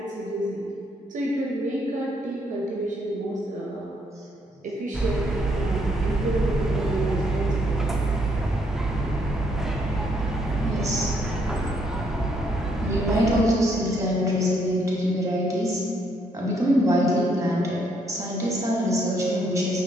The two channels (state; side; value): normal; both; correlation 0.71